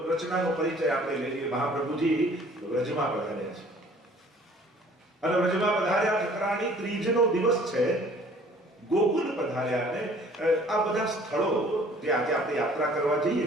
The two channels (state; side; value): normal; both; correlation 0.54